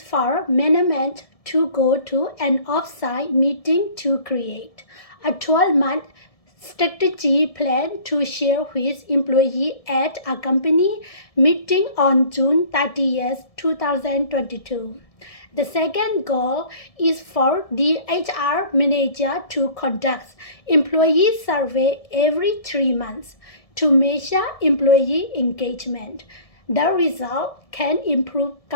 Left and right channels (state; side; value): late; right; 1.7 ms